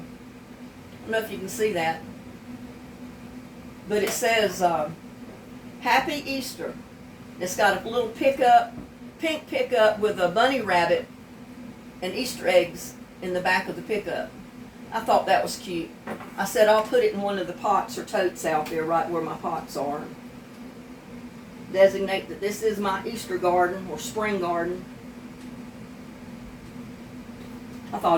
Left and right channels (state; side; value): identical; both; correlation 1.00